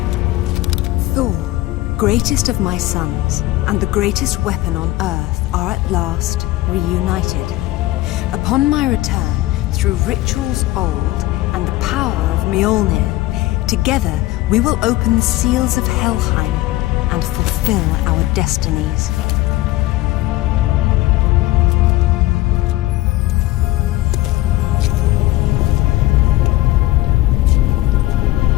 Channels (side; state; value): right; quieter; 17.6 dB